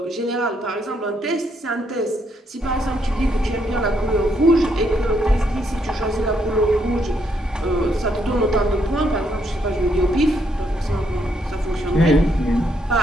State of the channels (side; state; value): both; normal; correlation 0.75